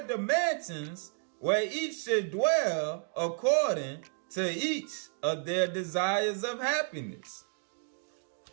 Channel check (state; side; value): silent; left; 57 dB below the other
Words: the mansions where each should dwell according to each of their desires of happiness.